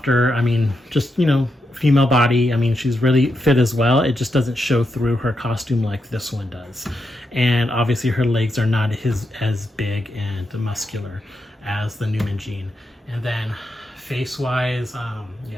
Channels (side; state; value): both; normal; correlation 0.85